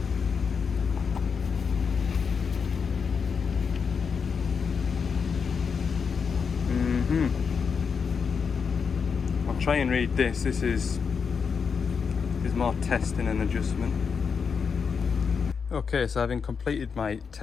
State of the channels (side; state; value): right; quieter; 6.0 dB